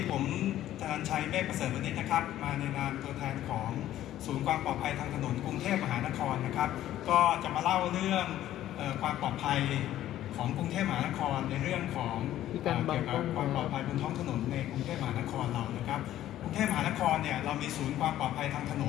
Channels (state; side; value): quieter; right; 13.0 dB